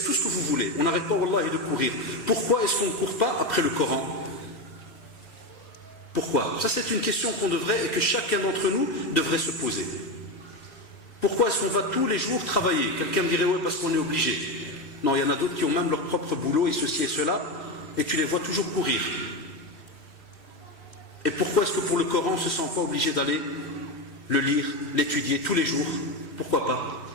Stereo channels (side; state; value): right; late; 2.7 ms